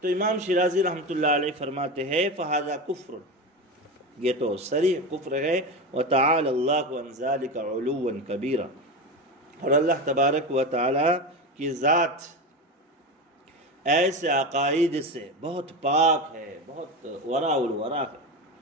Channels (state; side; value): normal; both; correlation 0.21